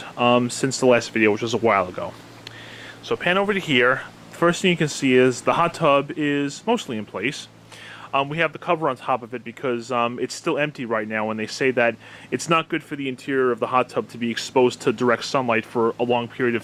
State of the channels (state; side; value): identical; both; correlation 1.00